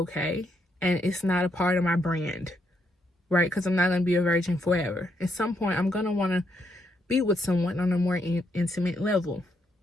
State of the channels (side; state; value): both; normal; correlation 0.77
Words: And it's not a part of my brand. Right? Because I'm not going to be a virgin forever. At some point, I'm going to want to be with someone on a more intimate level.